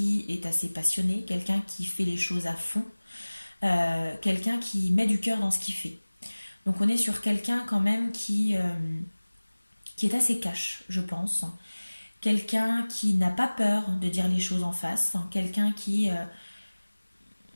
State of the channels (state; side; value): inverted; both; correlation -1.00